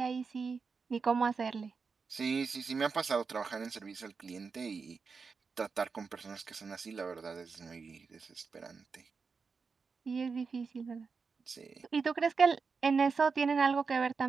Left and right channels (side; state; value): left; quieter; 5.1 dB